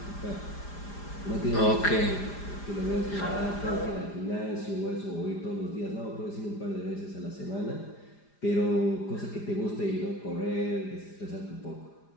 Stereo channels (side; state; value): right; late; 4.9 ms